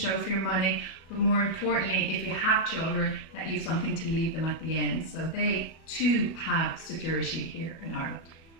for your money, but more importantly, if you have children, that you've something to leave them at the end. So they too have security here in Ireland.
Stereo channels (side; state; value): right; late; 37 ms